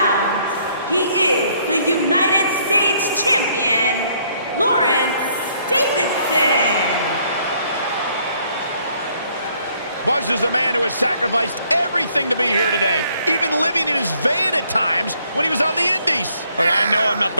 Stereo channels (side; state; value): both; inverted; correlation -0.66